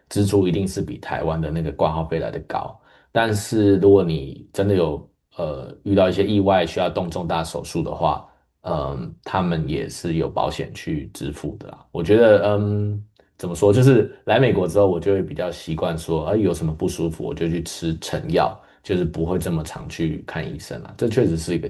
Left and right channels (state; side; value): identical; both; correlation 1.00